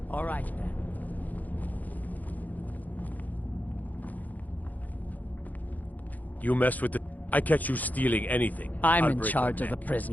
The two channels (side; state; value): right; late; 0.081 ms